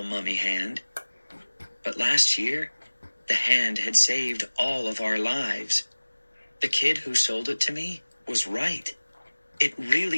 mummy hand. But last year, the hand had saved all of our lives. The kid who sold it to me was right. It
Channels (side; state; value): both; inverted; correlation -1.00